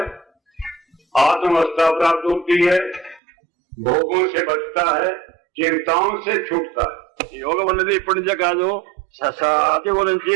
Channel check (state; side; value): drops out; left; at 3.2 s